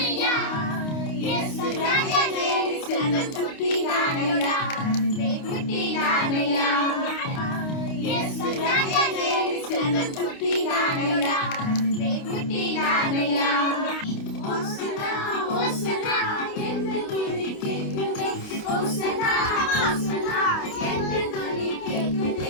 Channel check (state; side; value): late; right; 29 ms